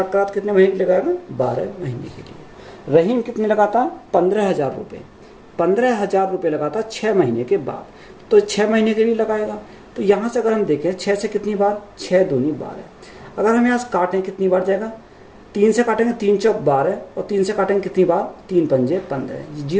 करा तो कितने महीने के लिए लगाएगा 12 महीने के लिए। रहीम कितने लगाता है 15,000 रुपये, 15,000 रुपये लगाता 6 महीने के बाद, तो 6 महीने के लिए लगाएगा। तो यहाँ से अगर हम देखें 6 से कितनी बार 6 दूनी 12, अगर हम यहाँ से काटें कितनी बार जाएगा, 3 से काटेंगे 3 चौक 12 और 3 से काटेंगे कितनी बार 3 पंजे 15,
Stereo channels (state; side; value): identical; both; correlation 1.00